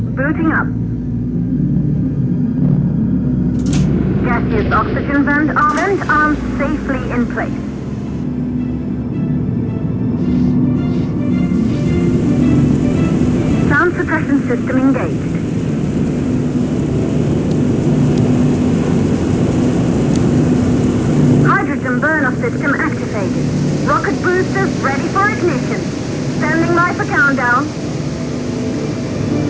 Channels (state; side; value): identical; both; correlation 1.00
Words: booting up. Gaseous oxygen vent arms safely in place. Sound suppression system engaged. Hydrogen burn-off system activated. Rocket boosters ready for ignition. Standing by for countdown.